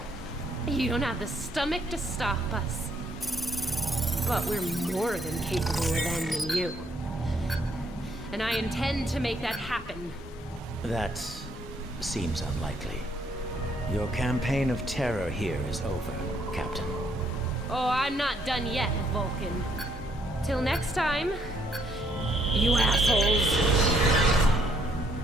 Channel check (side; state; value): both; normal; correlation 0.69